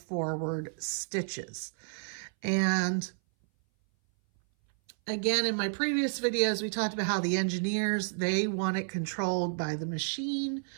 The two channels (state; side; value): silent; left; 57 dB below the other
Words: stitches. And again, in my previous videos, we talked about how the engineers, they want it controlled by the machine.